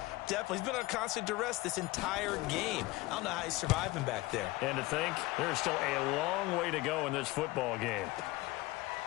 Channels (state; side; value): quieter; right; 20.2 dB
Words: definitely. He's been on constant duress this entire game. I don't know how he's surviving back there. And to think, there's still a long way to go in this football game.